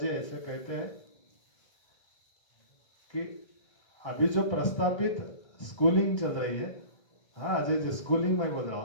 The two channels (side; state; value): right; late; 1.3 ms